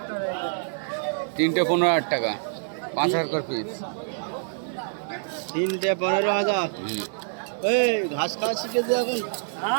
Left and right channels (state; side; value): silent; left; 61 dB below the other